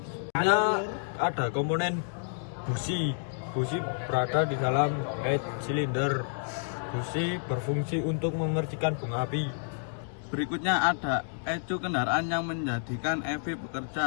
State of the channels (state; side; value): silent; right; digital silence